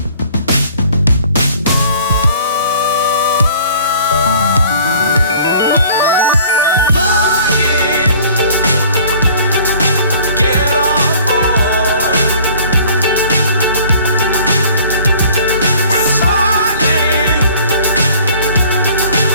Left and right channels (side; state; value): both; inverted; correlation -0.52